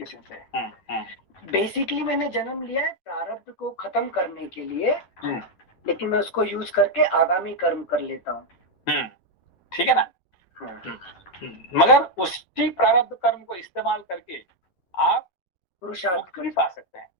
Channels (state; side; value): late; right; 11 ms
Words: sir. बेसिकली मैंने जन्म लिया है प्रारब्ध को खत्म करने के लिए, लेकिन मैं उसको यूज करके आगामी कर्म कर लेता हूँ, ठीक है ना। मगर उसी प्रारब्ध कर्म को इस्तेमाल करके आप पुरुषार्थ भी पा सकते हैं,